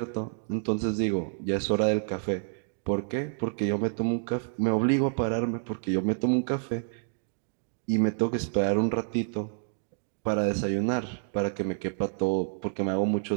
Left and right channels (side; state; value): left; silent; digital silence